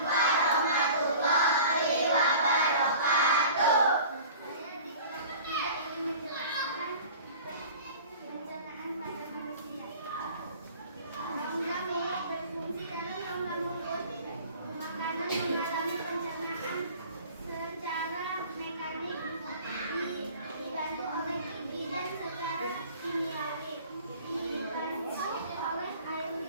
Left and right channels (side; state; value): both; inverted; correlation -0.43